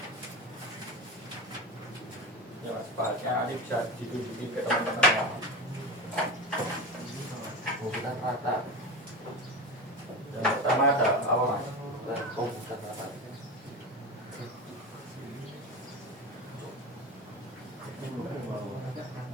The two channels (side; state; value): both; normal; correlation 0.24